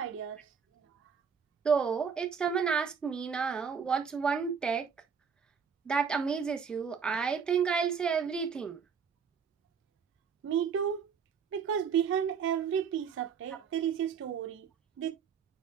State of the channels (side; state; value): left; quieter; 6.5 dB